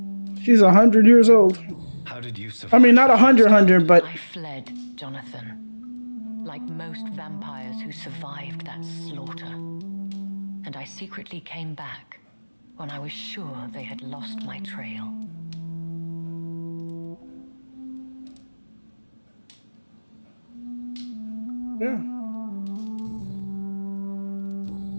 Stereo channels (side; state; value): both; inverted; correlation -1.00